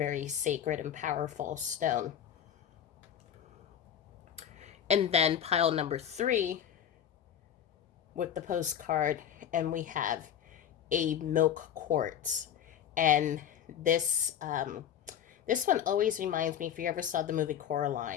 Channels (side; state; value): right; quieter; 9.5 dB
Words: sacred and powerful stone. And then pile number 3 with the postcard, and we have a milk quartz. And this one always reminds me, if you ever saw the movie